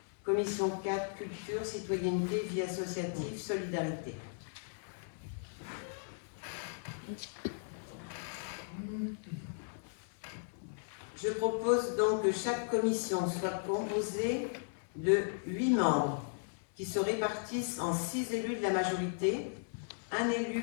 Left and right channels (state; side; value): silent; right; digital silence